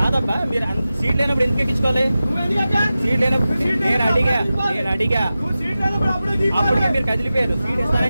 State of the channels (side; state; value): both; inverted; correlation -0.94